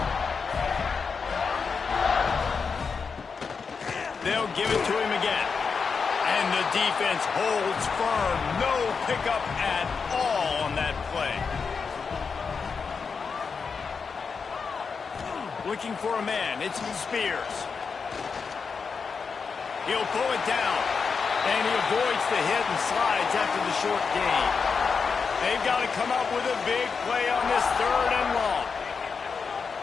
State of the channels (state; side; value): quieter; right; 5.4 dB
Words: They'll give it to him again. And the defense holds firm. No pickup at all on that play. Looking for a man. It's Spears. He'll pull it down. And he avoids the hit and slides after the short gain. They've got to come up with a big play on this 3rd and long.